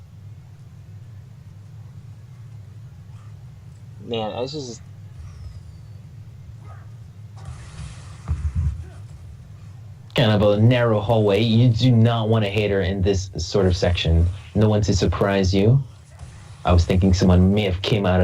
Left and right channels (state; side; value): identical; both; correlation 1.00